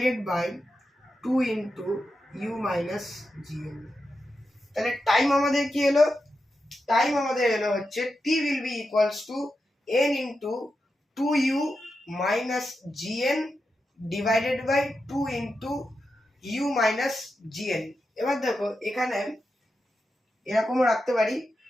by 2 into u minus gn। তাহলে টাইম আমাদের কি হলো, টাইম আমাদের এলো হচ্ছে t will be equals to n into 2u minus gn divided by 2 into u minus gn। এবার দেখো এখানে এরকম রাখতে পারি,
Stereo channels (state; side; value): normal; both; correlation 0.88